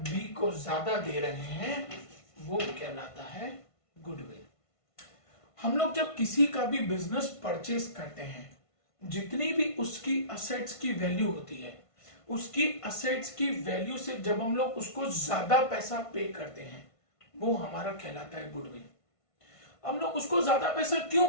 बी को ज्यादा दे रहे हैं वो कहलाता है गुडविल। हम लोग जब किसी का भी बिजनेस परचेज करते हैं, जितनी भी उसकी असेट्स की वैल्यू होती है, उसकी असेट्स की वैल्यू से जब हम लोग उसको ज्यादा पैसा पे करते हैं वो हमारा कहलाता है गुडविल। हम लोग उसको ज्यादा पैसा क्यों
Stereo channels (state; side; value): late; right; 1.5 ms